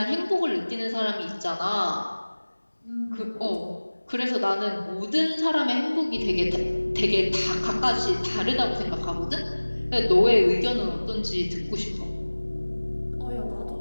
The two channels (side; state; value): both; inverted; correlation -1.00